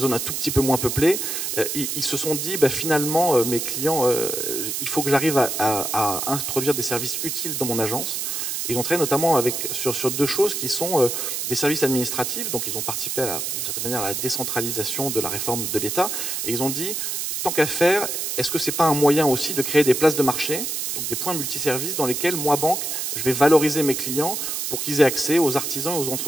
un tout petit peu moins peuplées, ils se sont dit finalement mes clients, il faut que j'arrive à introduire des services utiles dans mon agence. Ils ont travaillé notamment sur deux choses qui sont des services administratifs, donc ils ont participé d'une certaine manière à la décentralisation de la réforme de l'État, et ils ont dit, tant qu'à faire, est-ce que ce n'est pas un moyen aussi de créer des places de marché, donc des points multiservices dans lesquels, moi, banque, je vais valoriser mes clients pour qu'ils aient accès aux artisans et aux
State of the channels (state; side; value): noise; right; hiss, 2 dB below the sound